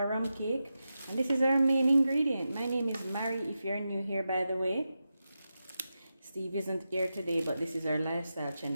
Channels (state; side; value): inverted; both; correlation -0.90